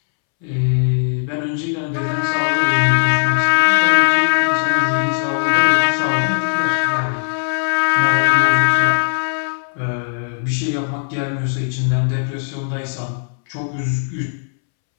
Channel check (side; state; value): right; silent; 67 dB below the other